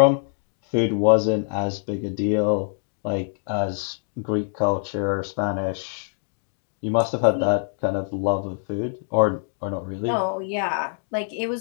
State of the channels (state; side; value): silent; right; digital silence